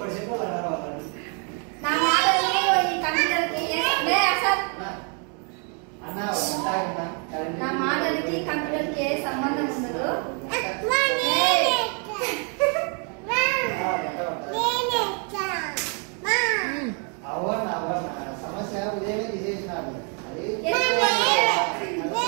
నా మాటలకి కంప్యూటర్కి ఏ సంబంధం ఉండదు. సమస్య ఉదయమే తీసేసినారు.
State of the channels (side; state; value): left; quieter; 38.5 dB